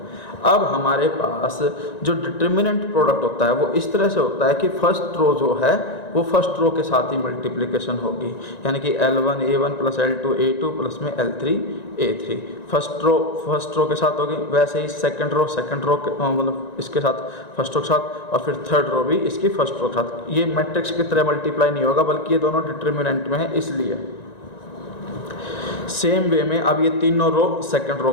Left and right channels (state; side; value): late; right; 1.9 ms